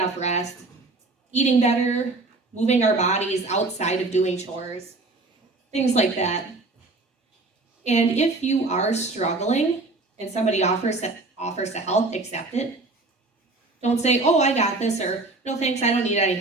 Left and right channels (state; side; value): quieter; left; 3.3 dB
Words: rest, eating better, moving our bodies outside of doing chores, things like that. And if you are struggling and somebody offers to help, accept it. Don't say, oh, I got this, or no thanks, I don't need any